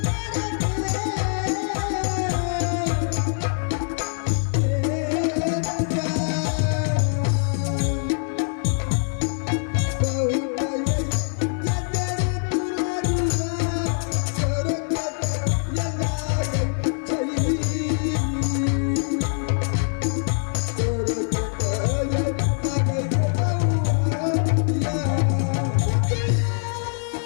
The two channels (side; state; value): right; silent; 59 dB below the other